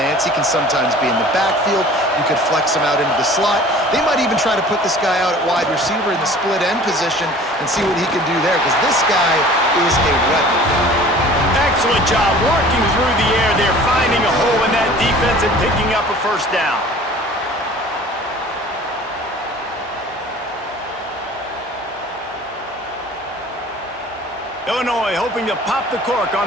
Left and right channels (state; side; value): normal; both; correlation 0.46